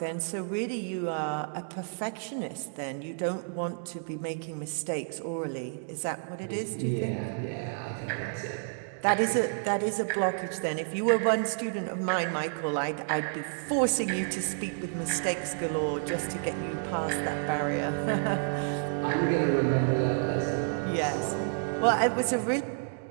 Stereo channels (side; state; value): left; silent; digital silence